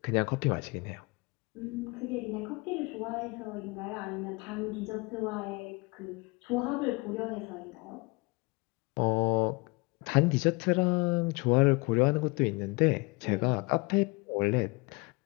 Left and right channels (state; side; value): quieter; right; 27.6 dB